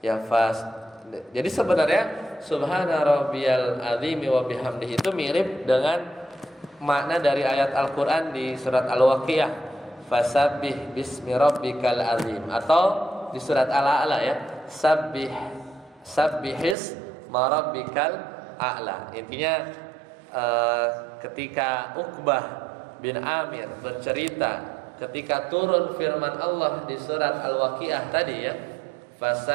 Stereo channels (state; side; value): drops out; left; at 16.8 s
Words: ya Jadi sebenarnya Subhana rabbiyal azimi wa bihamdi itu mirip dengan makna dari ayat Al-Qur'an di surat Al-Waqiah, fasabbih bismi rabbikal azim, atau di surat Al-A'la ya, sabbihis ma rabbikal a'la. Intinya ketika Uqbah bin Amir bercerita ketika turun firman Allah di surat Al-Waqiah tadi ya,